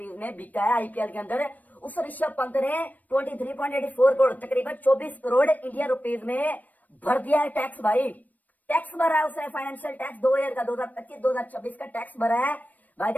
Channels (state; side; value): late; right; 0.080 ms